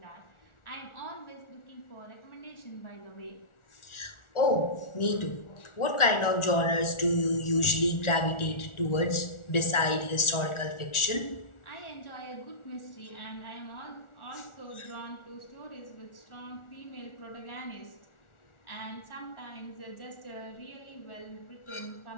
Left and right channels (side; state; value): right; late; 1.4 ms